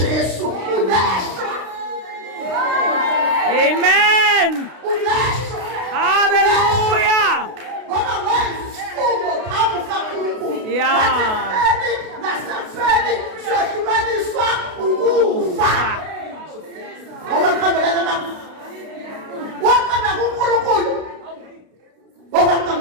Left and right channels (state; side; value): late; left; 32 ms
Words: uleshwa. Amen. Uleshwa. Hallelujah. Ngoba wenza isifungo phambi kaNkulunkulu. Yeah. Nasefeni siyahlukaniswa ukufa. Owankambelana mama. Wakamba kuNkulunkulu.